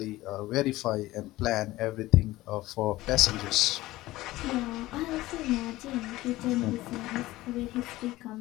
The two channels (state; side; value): quieter; right; 17.6 dB